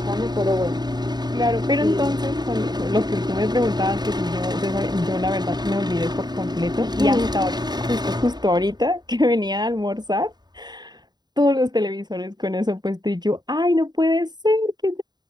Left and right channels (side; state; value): left; late; 0.20 ms